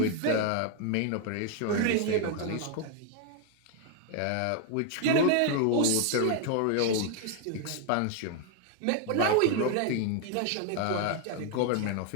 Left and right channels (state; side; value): different; both; correlation 0.00